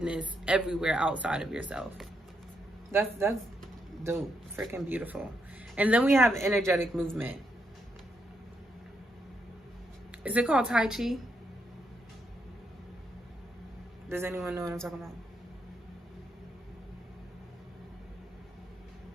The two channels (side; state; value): both; normal; correlation 0.79